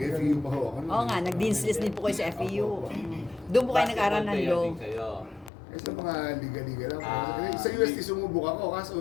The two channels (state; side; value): drops out; right; at 5.5 s